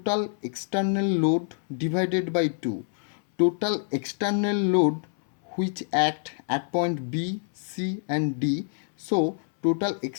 external load divided by 2. Total external load which act at point B, C and D. So total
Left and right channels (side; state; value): right; silent; 61 dB below the other